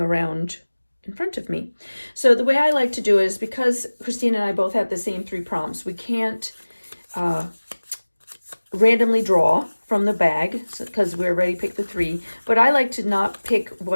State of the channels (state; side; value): inverted; both; correlation -1.00